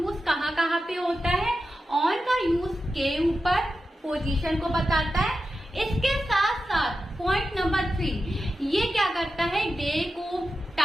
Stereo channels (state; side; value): normal; both; correlation 0.91